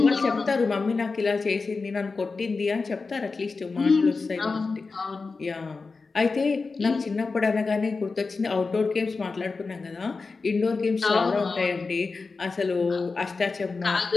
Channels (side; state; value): right; quieter; 4.2 dB